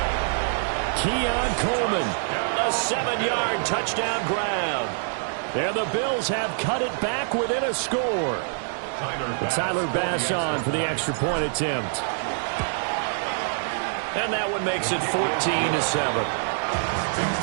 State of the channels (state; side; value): silent; left; digital silence